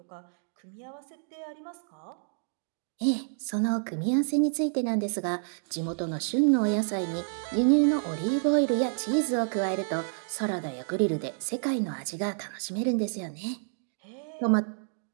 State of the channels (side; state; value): left; silent; digital silence